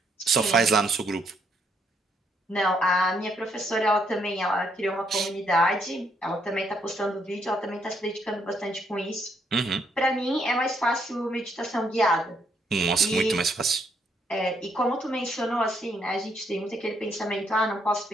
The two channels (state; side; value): normal; both; correlation 0.73